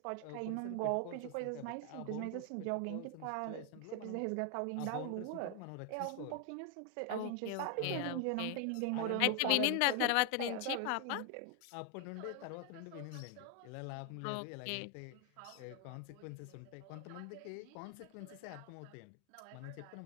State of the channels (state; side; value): different; both; correlation 0.01